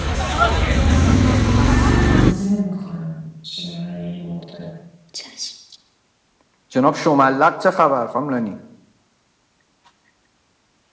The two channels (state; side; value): identical; both; correlation 1.00